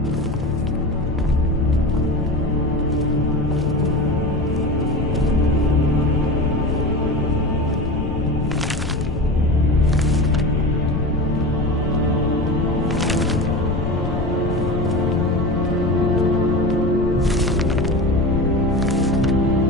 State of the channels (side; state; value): left; noise; rumble, 5 dB below the sound